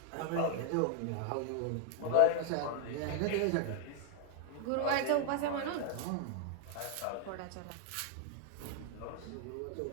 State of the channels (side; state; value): both; different; correlation 0.00